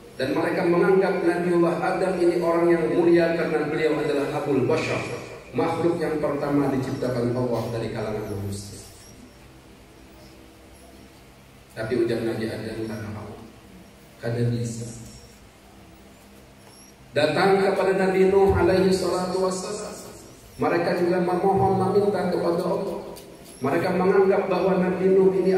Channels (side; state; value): both; identical; correlation 1.00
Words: Dan mereka menganggap Nabiullah Adam ini orang yang mulia karena beliau adalah Abul Bashar, makhluk yang pertama diciptakan Allah dari kalangan manusia. Tapi ujar Nabi Adam, kada bisa. Datang kepada Nabi Nuh alaihi salatu wassalam. Mereka juga memohon, meminta kepada Allah. Mereka menganggap bahwa Nabi Nuh ini